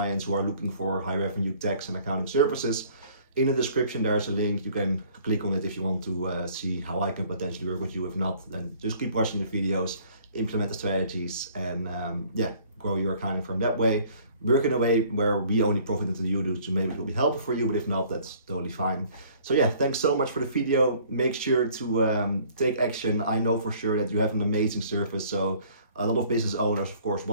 who are looking for high revenue tax and accounting services, in the description there's a link. You can click on it if you want to see how I can potentially work with you. If not, then just keep watching the videos, implement the strategies, and grow your accounting firm that way. Work in a way where we only profit until you do, so maybe it will be helpful for you, but if not, that's totally fine. So yeah, thanks so much for the video. Make sure to take action. I know for sure that you have an amazing service, so a lot of business owners of course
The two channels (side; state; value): both; inverted; correlation -0.55